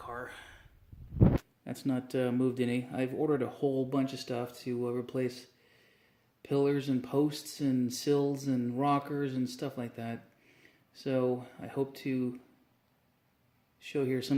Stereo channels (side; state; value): both; identical; correlation 1.00